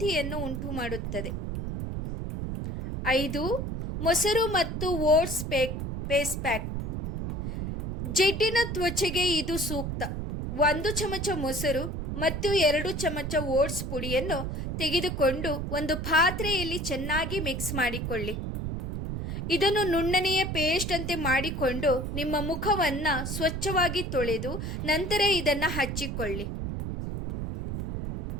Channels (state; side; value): noise; right; rumble, 3 dB below the sound